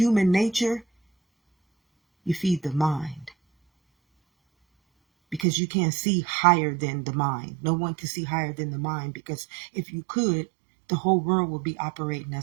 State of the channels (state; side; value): drops out; left; at 5.5 s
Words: nature, you feed the mind. Because you can't see higher than the mind. No one can see higher than the mind, because if you could, the whole world would be operating